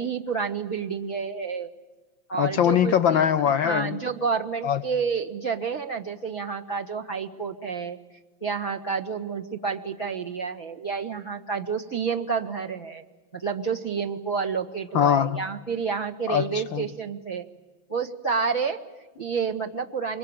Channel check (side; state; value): right; late; 5.9 ms